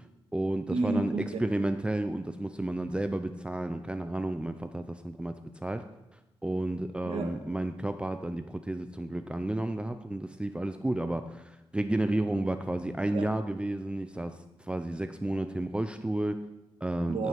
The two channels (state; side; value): normal; both; correlation 0.95